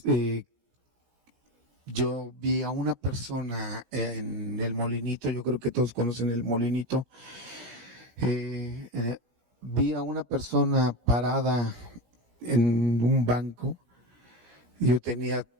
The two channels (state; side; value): late; left; 17 ms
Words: yo vi a una persona en el Molinito, yo creo que todos conocen el Molinito, vi a una persona parada en un banco. Yo tenía